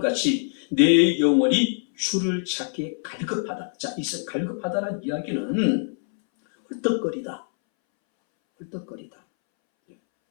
내 영혼이 주를 찾기에 갈급하다. 자, 이 갈급하다는 이야기는 헐떡거리다. 헐떡거리다.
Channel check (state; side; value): silent; right; 62 dB below the other